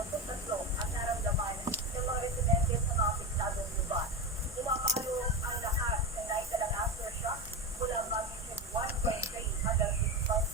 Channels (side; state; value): both; normal; correlation 0.18